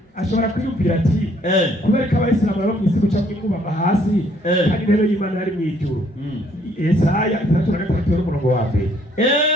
ashobora kwiyumvira ati kubera ko abayisilamu baba mu isi guca mwikubama hasi kandi intebe y'Imana yari mu ijuru. Yesaya 3:3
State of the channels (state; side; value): normal; both; correlation 0.65